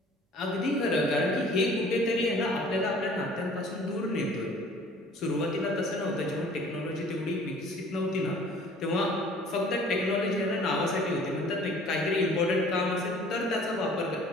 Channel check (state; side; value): normal; both; correlation 0.51